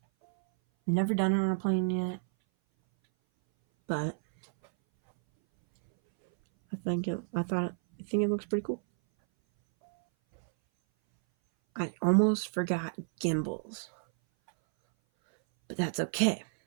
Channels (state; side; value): silent; left; 58 dB below the other